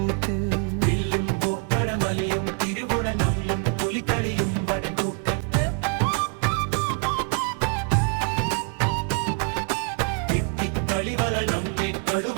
വില്ലും പൂപ്പടമലിയും തിരുവുടലും പുലിക്കളിയും വടക്കൂട്ടത്ത് കളിവളി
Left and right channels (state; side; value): quieter; left; 37.3 dB